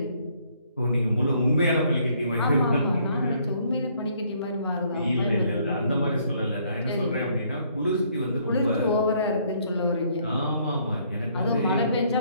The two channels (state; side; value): inverted; both; correlation -0.66